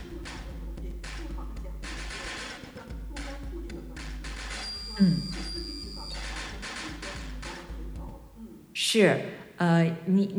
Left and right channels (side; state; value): both; identical; correlation 1.00